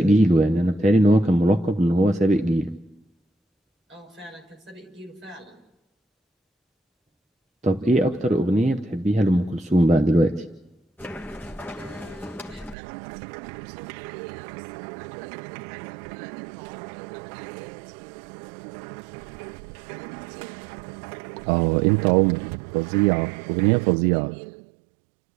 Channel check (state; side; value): drops out; left; at 12.8 s